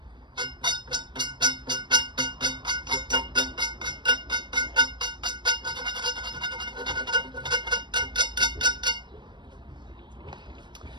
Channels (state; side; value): late; left; 0.22 ms